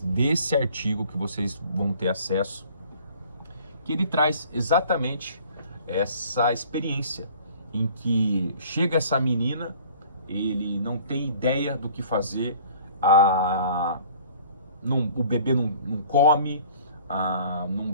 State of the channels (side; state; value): both; inverted; correlation -0.51